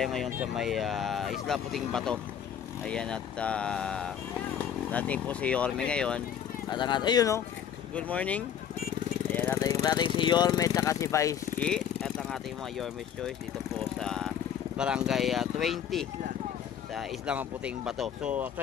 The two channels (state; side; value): quieter; right; 8.8 dB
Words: ngayon sa may Isla Puting Bato. Ayan at natin po si Yorme ngayon. At ang ayun o, good morning. Ayan natin si Yorme at si Vice G. At ang ating mga Yorme's Choice dito po sa Barangay 20 sa Isla Puting Bato. So